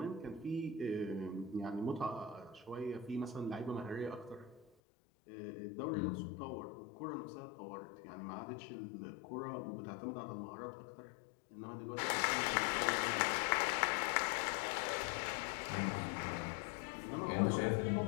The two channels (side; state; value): right; drops out; at 4.7 s